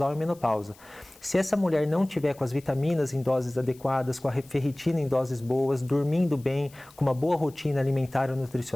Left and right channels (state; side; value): noise; left; hiss, 25 dB below the sound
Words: e menopausa. Se essa mulher não tiver com as vitaminas em doses adequadas, com a ferritina em doses boas, dormindo bem, com uma boa rotina alimentar ou